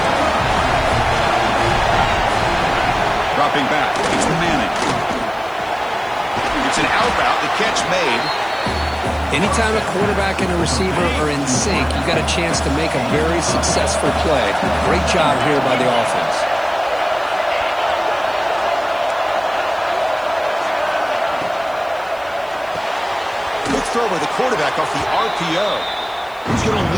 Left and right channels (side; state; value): right; noise; hiss, 27 dB below the sound